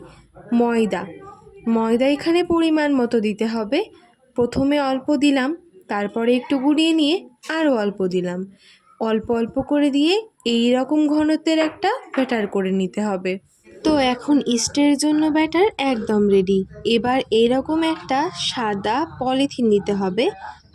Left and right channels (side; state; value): both; identical; correlation 1.00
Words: ময়দা এখানে পরিমাণ মতো দিতে হবে। প্রথমে অল্প দিলাম, তারপরে একটু গুলিয়ে নিয়ে আরও অল্প দিলাম। অল্প অল্প করে দিয়ে এই রকম ঘনত্বের একটা ব্যাটার করে নিতে হবে। তো এখন ইস্টের জন্য ব্যাটার একদম রেডি। এবার এরকম একটা সাদা পলিথিন নিতে হবে,